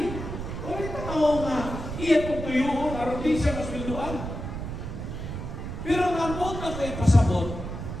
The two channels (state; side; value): noise; right; rumble, 6 dB below the sound